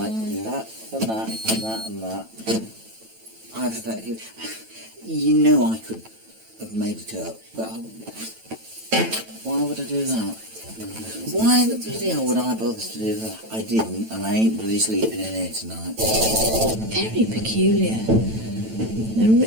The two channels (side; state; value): left; late; 9.0 ms